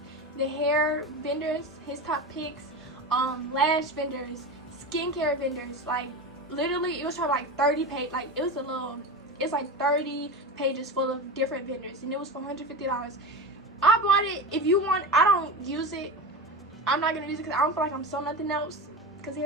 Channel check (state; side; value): normal; both; correlation 0.24